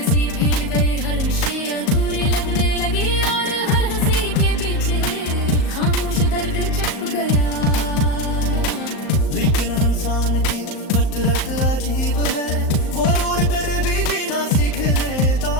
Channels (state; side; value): late; right; 38 ms